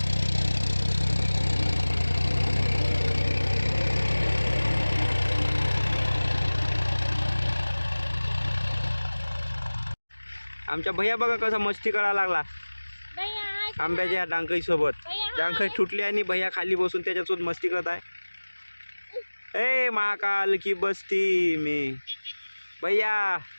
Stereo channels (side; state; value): both; inverted; correlation -1.00